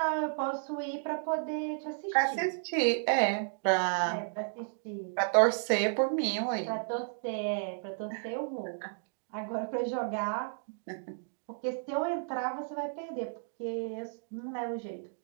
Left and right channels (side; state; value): left; silent; digital silence